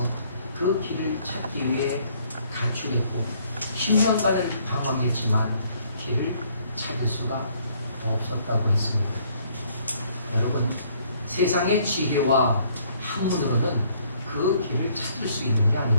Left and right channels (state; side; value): inverted; both; correlation -0.64